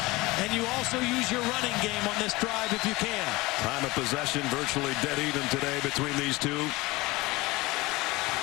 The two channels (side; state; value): right; quieter; 21.6 dB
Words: and you also use your running game on this drive if you can. Time of possession virtually dead even today between these two.